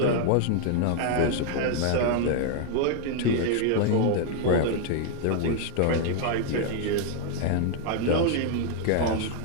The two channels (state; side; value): different; both; correlation 0.00